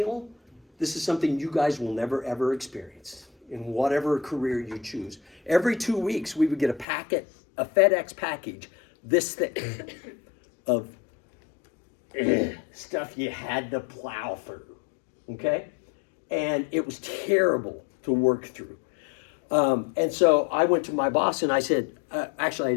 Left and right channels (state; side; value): drops out; right; at 6.9 s